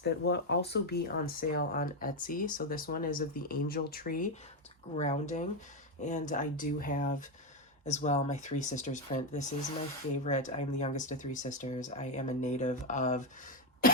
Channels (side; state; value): both; normal; correlation 0.07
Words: will also be on sale on Etsy. So this one is of the angel tree. It's grounding. And I do have as well my Three Sisters print. This is my favorite. I'm the youngest of three sisters. I am a native of